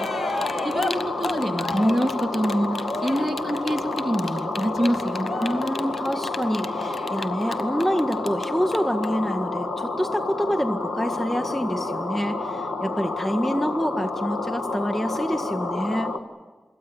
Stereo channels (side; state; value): both; normal; correlation 0.91